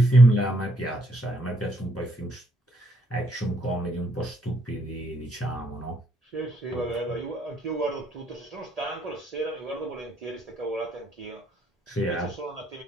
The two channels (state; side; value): normal; both; correlation 0.72